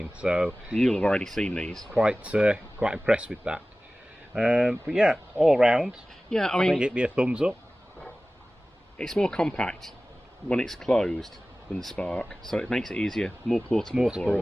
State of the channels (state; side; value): normal; both; correlation 0.97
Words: So you'll have already seen these. Quite impressed with that. But yeah, all round, yeah, I think mean, it'd be a thumbs up. It's more compact when it's closed than the Spark, so it makes it easier, more portable for